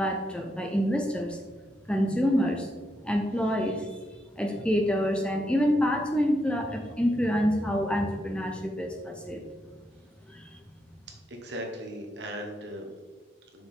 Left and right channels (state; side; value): normal; both; correlation 0.81